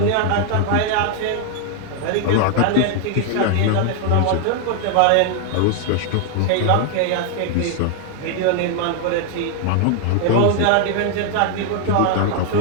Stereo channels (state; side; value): different; both; correlation 0.00